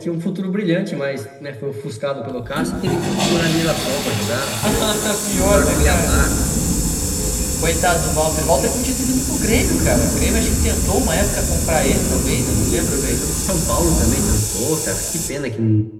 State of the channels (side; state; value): both; identical; correlation 1.00